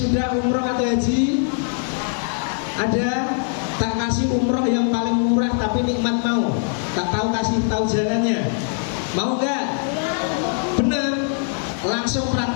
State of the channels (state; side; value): silent; right; 63 dB below the other